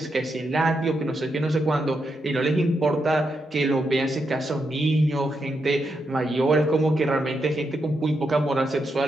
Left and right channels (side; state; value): both; normal; correlation 0.83